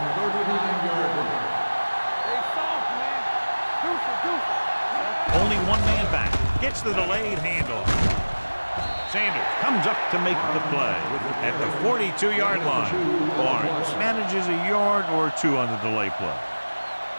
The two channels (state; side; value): inverted; both; correlation -1.00